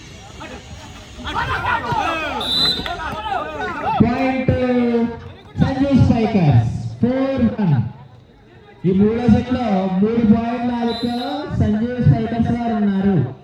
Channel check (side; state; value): both; identical; correlation 1.00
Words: Point to Sanjay Spikers. 4-1. ఈ మూడో set లో 3 పాయింట్ల ఆధిక్యంలో సంజయ్ స్పైకర్స్ వారు ఉన్నారు.